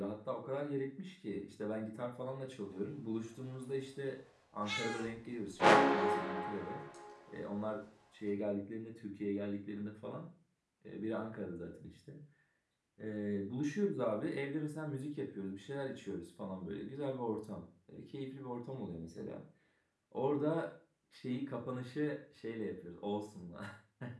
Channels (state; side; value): identical; both; correlation 1.00